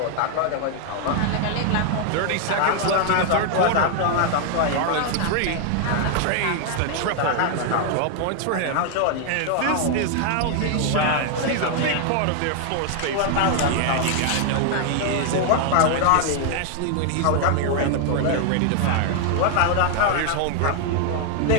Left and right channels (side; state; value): both; different; correlation 0.00